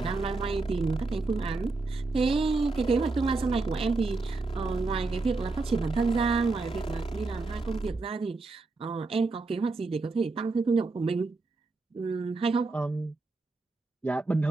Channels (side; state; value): left; quieter; 3.6 dB